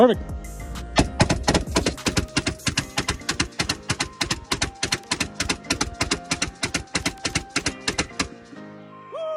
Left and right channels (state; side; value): identical; both; correlation 1.00